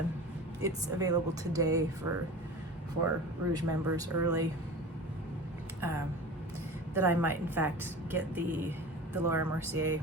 it's available today for Rouge members early. That I might in fact get the Laura Mercier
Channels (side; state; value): both; normal; correlation 0.35